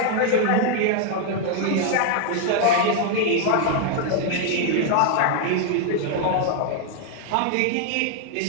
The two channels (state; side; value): different; both; correlation 0.00